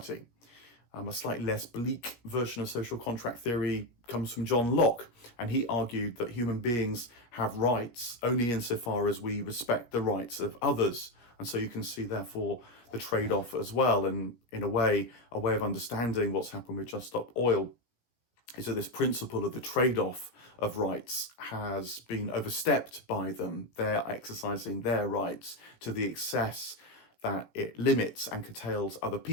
A slightly less bleak version of social contract theory comes from John Locke, and he argued that human beings have rights only insofar as we respect the rights of others. And so you can see, therefore, the trade-off as well. And in a way of understanding what's happened with Just Stop Oil is that this principle of the trade-off of rights has been overstepped by them. They're exercising their rights to the excess that it limits and curtails other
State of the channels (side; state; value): right; late; 17 ms